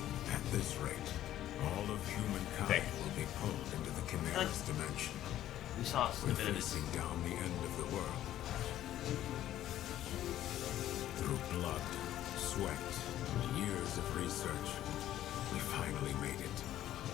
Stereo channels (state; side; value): quieter; right; 12.7 dB